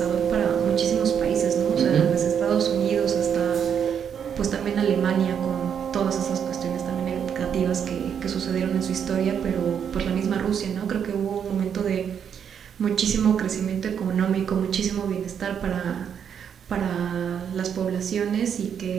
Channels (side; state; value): left; quieter; 8.0 dB